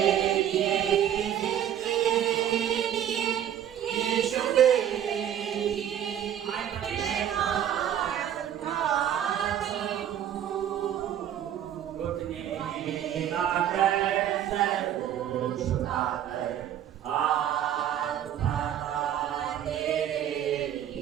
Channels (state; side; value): quieter; left; 10.4 dB